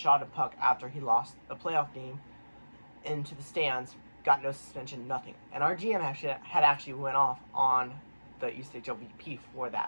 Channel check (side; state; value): both; inverted; correlation -1.00